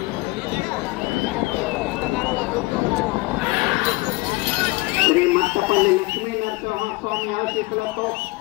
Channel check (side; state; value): right; quieter; 23.7 dB